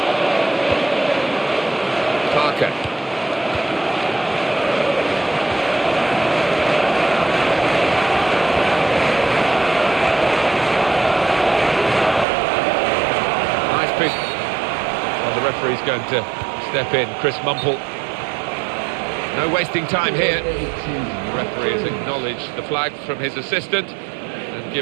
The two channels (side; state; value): left; drops out; at 12.2 s